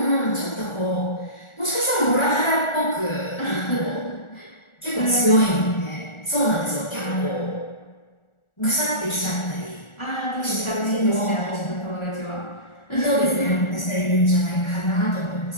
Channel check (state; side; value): late; right; 1.4 ms